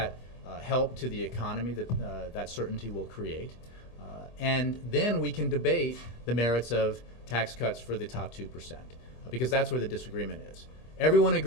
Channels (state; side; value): late; right; 25 ms